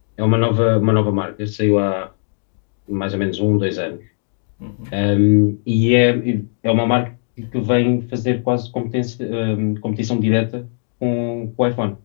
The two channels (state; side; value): silent; right; digital silence